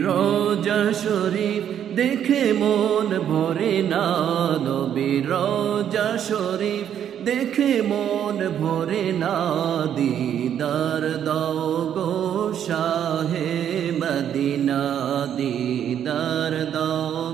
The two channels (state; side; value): quieter; left; 9.5 dB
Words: রওজা শরীফ দেখে মন ভরে না, নবীর রওজা শরীফ দেখে মন ভরে না। দিদার দাও গো শাহে মদিনা, দিদার দাও